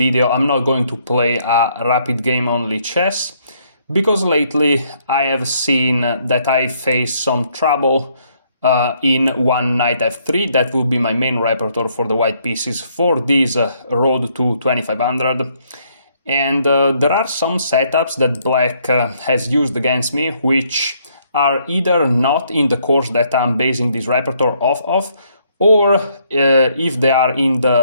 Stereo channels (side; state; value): both; inverted; correlation -0.69